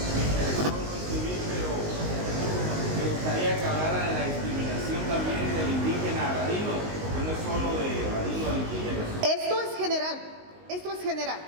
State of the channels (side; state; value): left; late; 19 ms